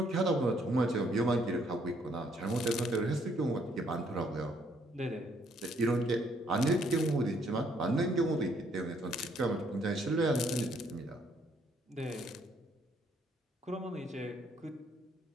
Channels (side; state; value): both; normal; correlation 0.68